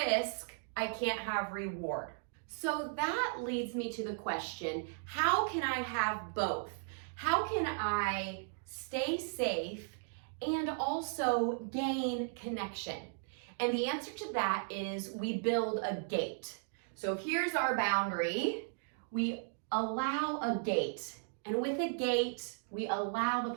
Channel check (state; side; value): silent; left; digital silence